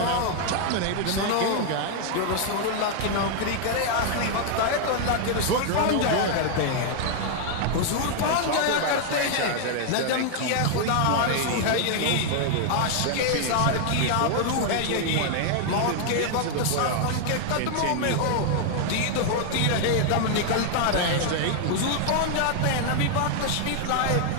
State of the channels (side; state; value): both; different; correlation 0.00